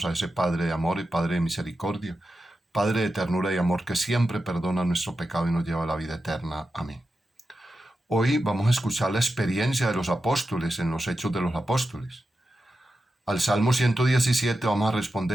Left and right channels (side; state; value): both; normal; correlation 0.90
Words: a ese Padre de amor y Padre de misericordia, Padre de ternura y amor, que siempre perdona nuestro pecado y nos lleva a la vida eterna. Amén. Hoy vamos a escuchar la experiencia de los apóstoles en los Hechos de los Apóstoles. Al Salmo 117 vamos a